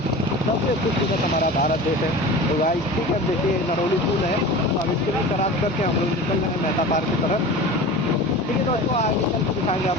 सबसे खूबसूरत हमारा भारत देश है। तो गाइस ठीक है, देखिए नरौली पुल है, तो हम इसको भी क्रॉस करके हम लोग निकल रहे हैं मेहता पार्क की तरफ। ठीक है दोस्तों, आगे चल के दिखाएंगे आप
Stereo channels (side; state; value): both; normal; correlation 0.34